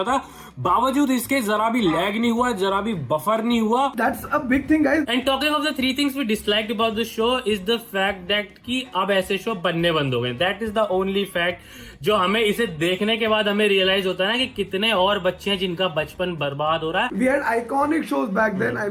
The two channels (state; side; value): identical; both; correlation 1.00